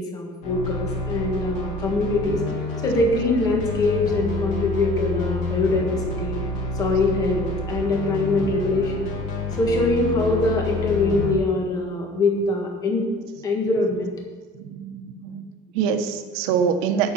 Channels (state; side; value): normal; both; correlation 0.47